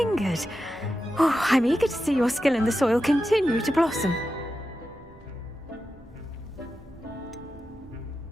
Oh, I'm eager to see your skill in the soil continue to blossom.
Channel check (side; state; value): both; normal; correlation 0.90